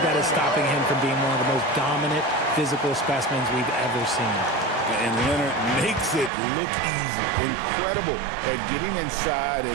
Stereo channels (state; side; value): drops out; left; at 6.3 s